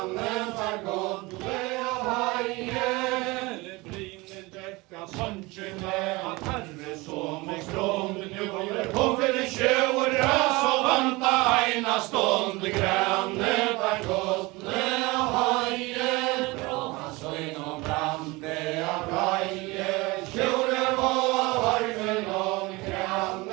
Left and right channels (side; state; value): left; quieter; 23.3 dB